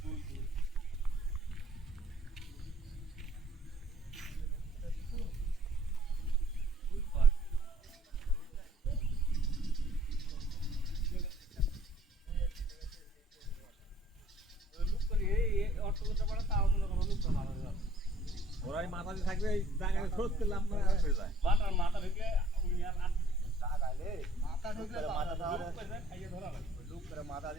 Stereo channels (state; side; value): normal; both; correlation 0.60